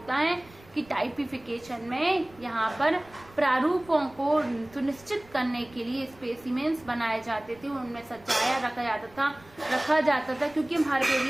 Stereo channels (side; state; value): right; noise; rumble, 25 dB below the sound